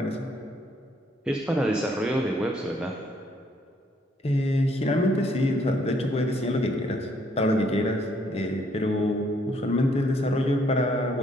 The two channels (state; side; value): normal; both; correlation 0.68